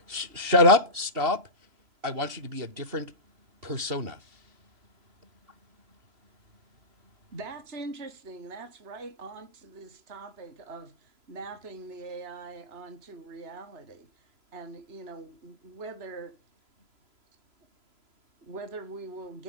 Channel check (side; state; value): left; late; 3.0 ms